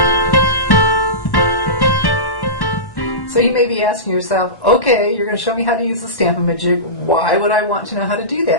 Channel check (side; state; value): right; late; 1.1 ms